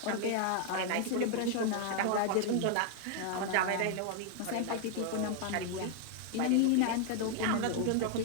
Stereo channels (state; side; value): different; both; correlation 0.00